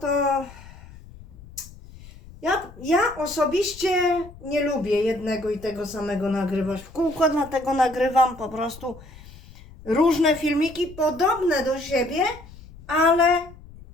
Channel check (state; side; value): noise; left; rumble, 19 dB below the sound